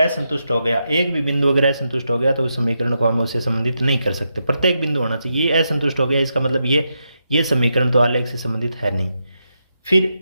हो गया तो उस समीकरण को हम उससे संबंधित नहीं कर सकते, प्रत्येक बिंदु होना चाहिए। ये असंतुष्ट हो गया, इसका मतलब ये समीकरण तो आलेख से संबंधित है नहीं।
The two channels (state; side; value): inverted; both; correlation -0.84